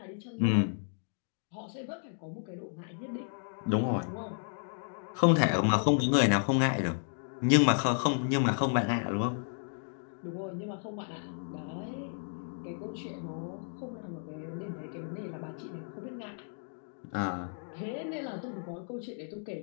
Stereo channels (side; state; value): right; silent; 56 dB below the other